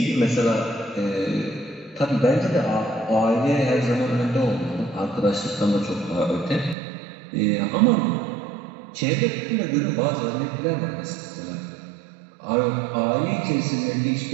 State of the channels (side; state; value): left; drops out; at 6.8 s